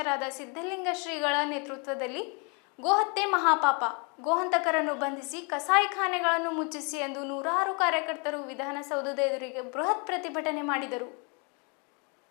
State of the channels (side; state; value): right; quieter; 34.2 dB